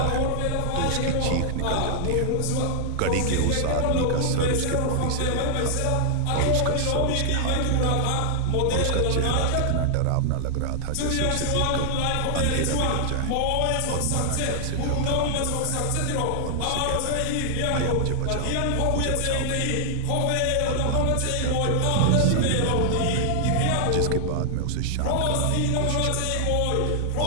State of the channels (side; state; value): both; different; correlation 0.00